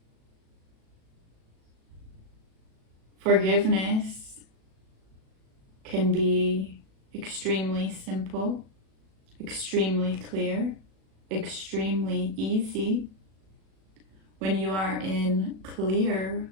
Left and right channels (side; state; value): left; late; 37 ms